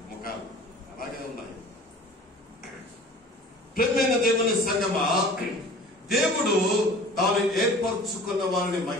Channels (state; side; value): normal; both; correlation 0.44